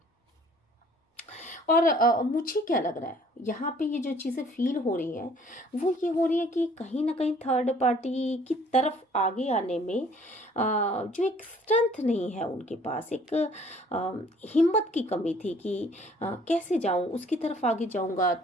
और मुझे क्या लग रहा है यहाँ पे ये जो चीज़ें फील हो रही हैं वो ये हो रही है कि कहीं ना कहीं थर्ड पार्टी की तरफ आगे आने में जो एक स्ट्रेंथ नहीं है उनके पास, एक हिम्मत की कमी थी कि कैसे जाऊँ उसकी तरफ आगे जाऊँगा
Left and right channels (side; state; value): both; normal; correlation 0.56